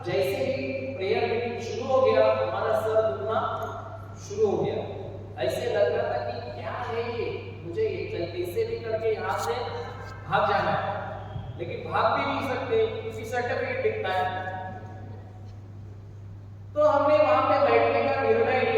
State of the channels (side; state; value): both; identical; correlation 1.00